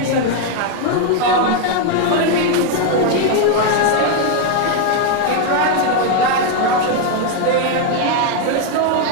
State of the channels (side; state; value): both; different; correlation 0.01